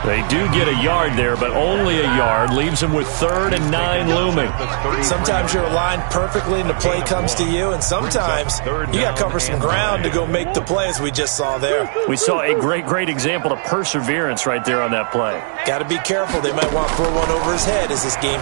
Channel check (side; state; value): left; silent; 67 dB below the other